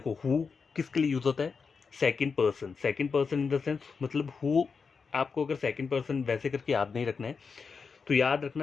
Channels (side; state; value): right; quieter; 5.3 dB